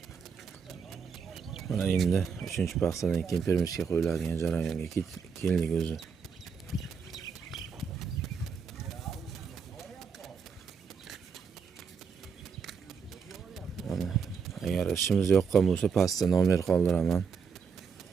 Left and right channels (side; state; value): left; quieter; 6.1 dB